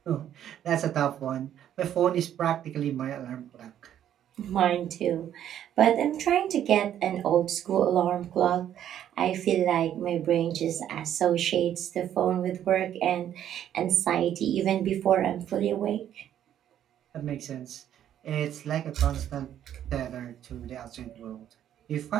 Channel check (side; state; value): left; quieter; 10.6 dB